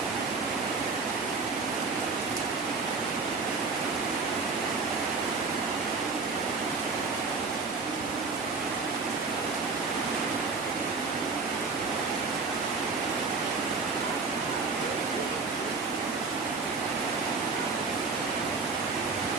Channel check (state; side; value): quieter; left; 4.4 dB